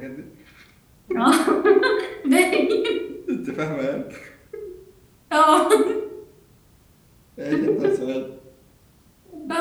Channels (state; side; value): identical; both; correlation 1.00